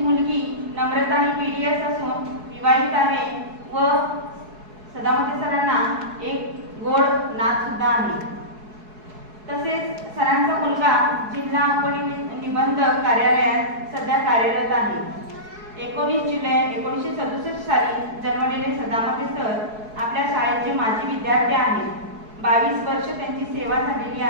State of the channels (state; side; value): late; left; 4.7 ms